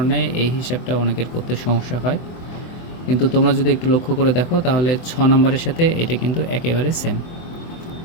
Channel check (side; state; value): right; late; 24 ms